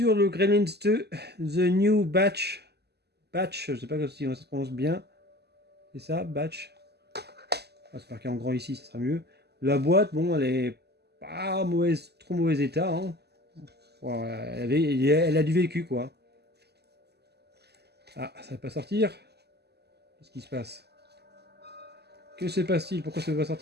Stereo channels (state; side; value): late; left; 0.48 ms